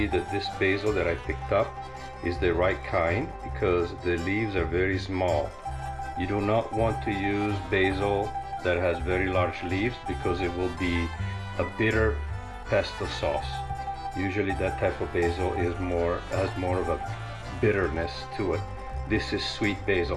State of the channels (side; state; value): both; identical; correlation 1.00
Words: that this basil that I picked up is the right kind because the leaves are very small. You do not want to use basil that has very large leaves because it will be a bitter pesto sauce. Usually that type of basil has more of a bitterness to it. This is sweet